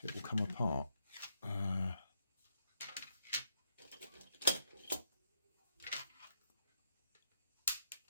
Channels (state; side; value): inverted; both; correlation -0.78